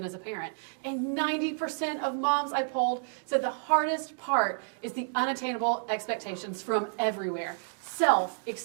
as a parent? And 90% of moms I polled said the hardest part is the unattainable expectations from everywhere. Self,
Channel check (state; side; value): silent; left; digital silence